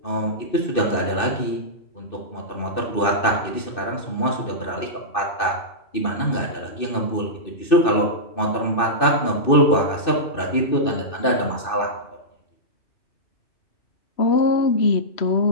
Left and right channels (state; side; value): late; right; 2.6 ms